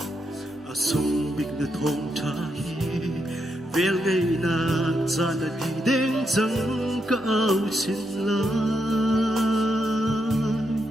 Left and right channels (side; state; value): both; normal; correlation 0.81